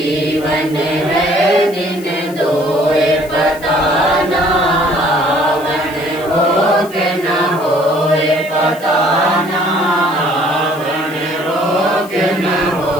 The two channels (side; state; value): left; noise; hiss, 19 dB below the sound